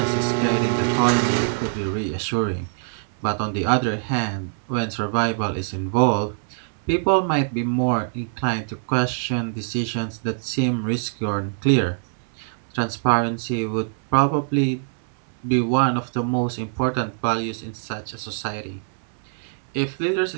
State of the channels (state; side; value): silent; left; 61 dB below the other